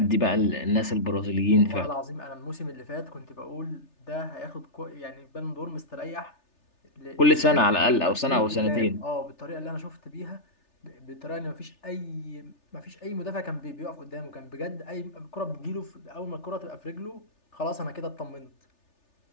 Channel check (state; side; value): late; right; 3.4 ms